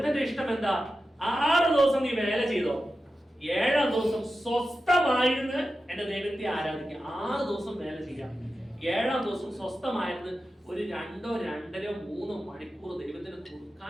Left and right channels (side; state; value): both; normal; correlation 0.92